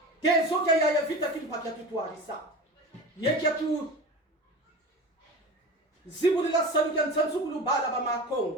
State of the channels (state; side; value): normal; both; correlation 0.33